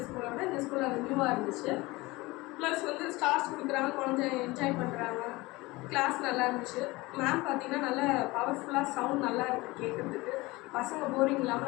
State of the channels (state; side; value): quieter; right; 21.7 dB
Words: ஸ்கூலை விட இந்த ஸ்கூலில் அது நியூவாக இருந்துச்சு. ப்ளஸ் வந்து ஸ்டார்ஸ் கொடுக்குறாங்க, குழந்தை என்ஜாய் பண்ணுறாங்க. கிளாஸ் நல்லா இருந்துச்சு. மேம் பார்த்தீங்கன்னா நல்லா பவர்ஃபுல்லாக சவுண்ட் நல்லா இருக்குது கேட்குறதுக்கு. பசங்க போரிங்